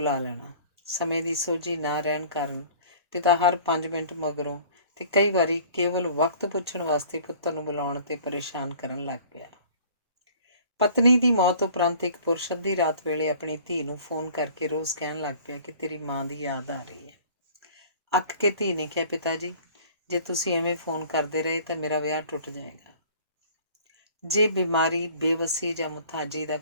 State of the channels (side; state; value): both; inverted; correlation -0.49